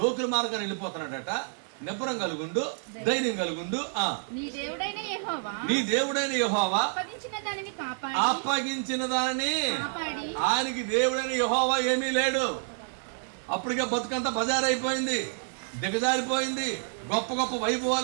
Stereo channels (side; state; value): left; silent; digital silence